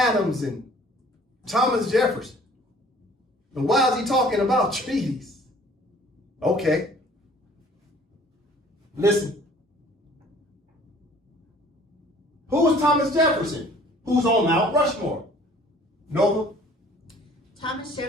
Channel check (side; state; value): both; normal; correlation 0.53